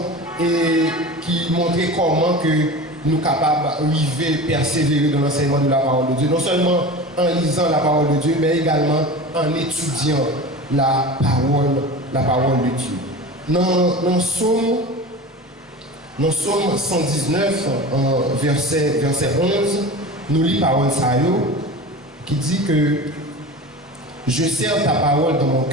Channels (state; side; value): normal; both; correlation 0.33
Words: et qui montrait comment que nous sommes capables d'arriver, persévérer dans l'enseignement de la parole de Dieu. Non seulement en lisant la parole de Dieu, mais également en étudiant la parole de Dieu. Dans Psaume 119, verset 11, nous lisons parole Sayo qui dit que je serre ta parole dans mon